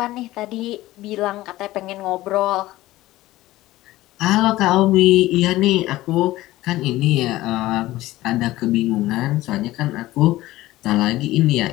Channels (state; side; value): quieter; right; 16.9 dB